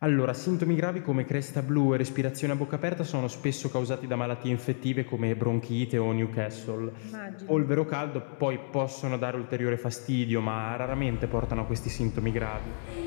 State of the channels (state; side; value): silent; right; digital silence